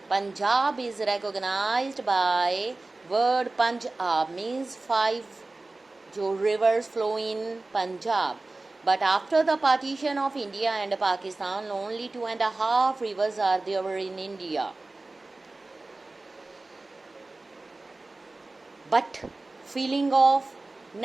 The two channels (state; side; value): quieter; left; 3.2 dB